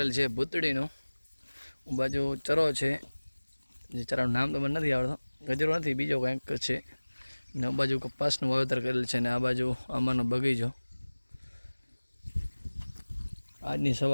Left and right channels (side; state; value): both; inverted; correlation -1.00